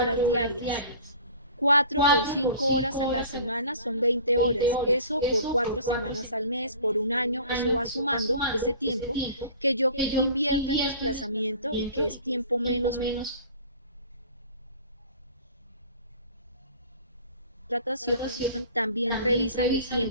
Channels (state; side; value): inverted; both; correlation -0.44